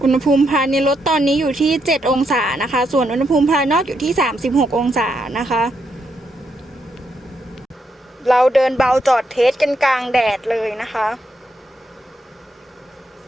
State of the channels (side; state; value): both; normal; correlation 0.79